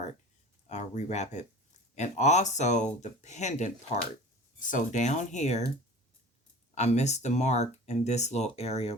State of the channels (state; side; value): normal; both; correlation 0.39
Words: rewrap it. And also the pendant part. So down here, I missed the mark in this little area